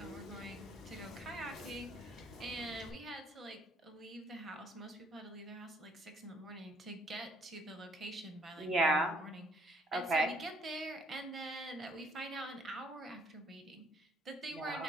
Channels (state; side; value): normal; both; correlation 0.63